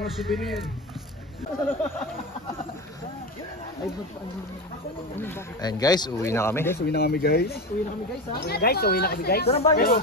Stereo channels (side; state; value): both; normal; correlation 0.22